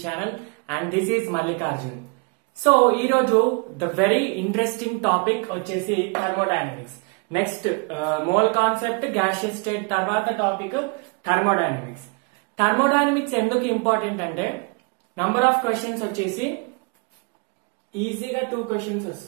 channel and this is Mallikarjun. So ee roju the very interesting topic vachesi thermodynamics. Next mole concept gaseous state tarvata topic thermodynamics. Thermodynamics enduku important ante number of questions vachesi easy ga 2 questions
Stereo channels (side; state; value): left; quieter; 32.4 dB